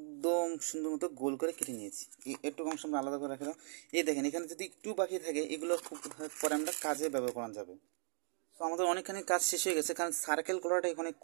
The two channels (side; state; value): left; silent; 52 dB below the other